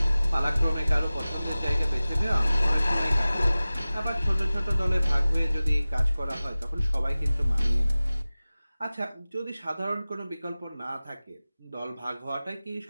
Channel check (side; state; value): both; inverted; correlation -0.97